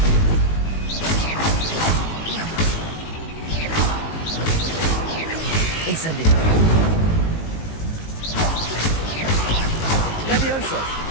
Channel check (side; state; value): right; late; 19 ms